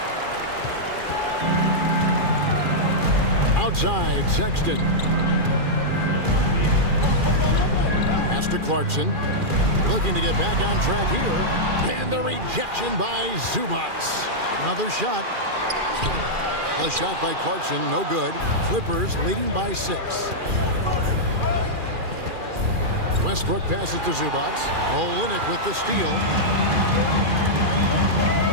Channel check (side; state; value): left; late; 2.4 ms